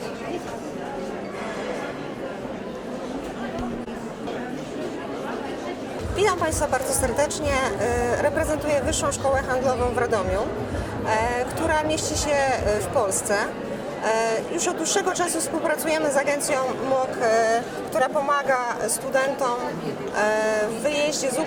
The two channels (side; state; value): both; identical; correlation 1.00